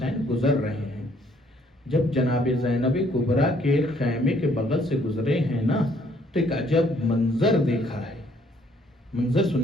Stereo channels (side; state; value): both; normal; correlation 0.64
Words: گزر رہے ہیں۔ جب جناب زینب کبریٰ کے خیمے کے بغل سے گزرے ہیں نا، تو ایک عجب منظر دیکھا ہے۔ منظر